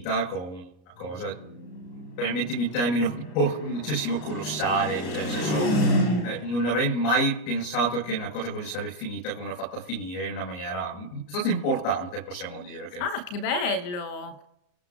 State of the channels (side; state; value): right; late; 33 ms